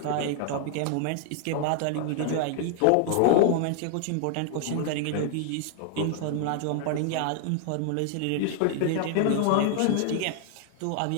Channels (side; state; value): both; different; correlation 0.00